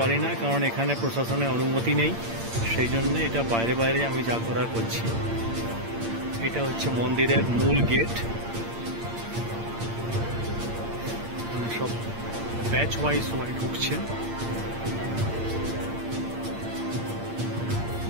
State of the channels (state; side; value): late; left; 8.7 ms